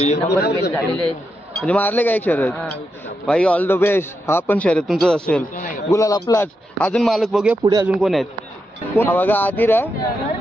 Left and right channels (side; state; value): both; normal; correlation 0.85